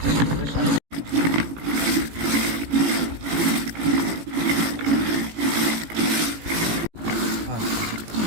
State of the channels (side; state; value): left; late; 18 ms